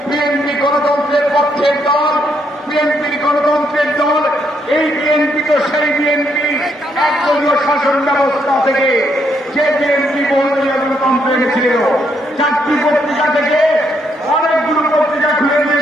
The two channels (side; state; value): both; normal; correlation 0.75